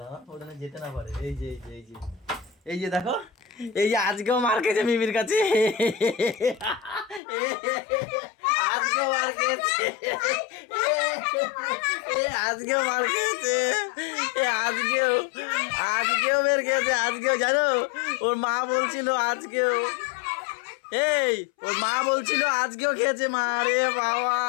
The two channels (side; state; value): right; drops out; at 7.2 s